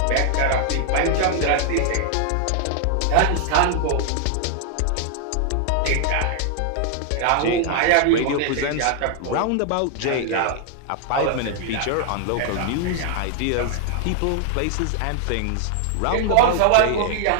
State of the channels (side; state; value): both; different; correlation 0.00